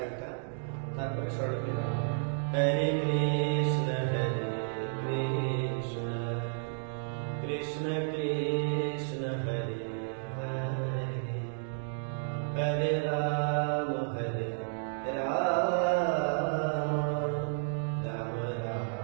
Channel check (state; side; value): silent; left; digital silence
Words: তারপরে স্বরলিপি। হরে কৃষ্ণ কৃষ্ণ কৃষ্ণ কৃষ্ণ হরে হরে, হরে Ram Ram Ram